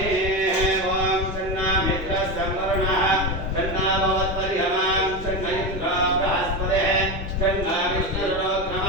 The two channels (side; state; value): both; normal; correlation 0.18